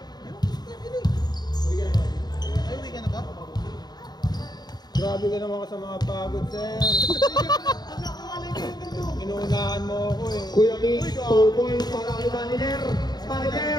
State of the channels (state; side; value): late; right; 0.20 ms